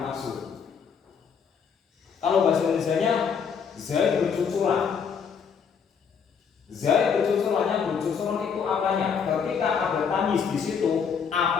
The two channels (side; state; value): right; quieter; 6.6 dB